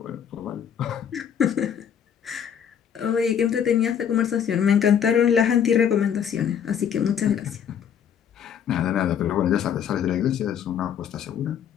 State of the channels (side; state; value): right; quieter; 8.4 dB